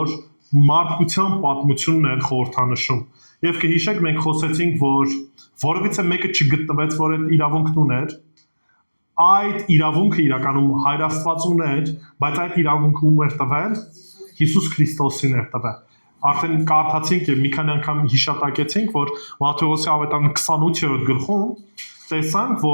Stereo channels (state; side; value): inverted; both; correlation -1.00